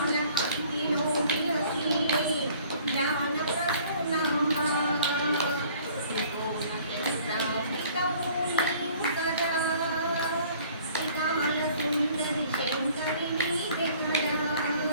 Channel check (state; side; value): inverted; both; correlation -0.54